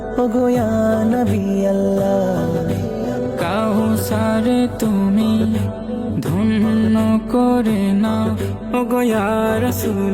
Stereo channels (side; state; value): both; identical; correlation 1.00